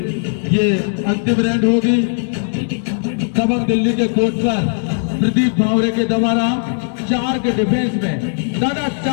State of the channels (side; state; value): right; silent; digital silence